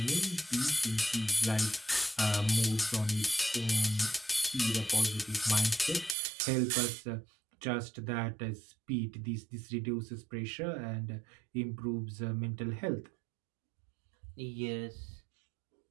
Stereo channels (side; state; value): left; drops out; at 6.2 s